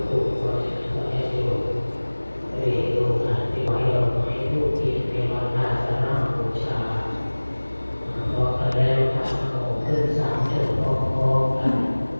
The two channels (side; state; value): both; inverted; correlation -1.00